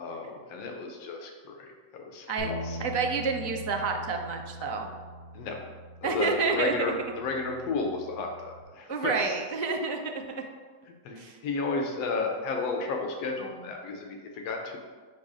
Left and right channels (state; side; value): late; right; 8.0 ms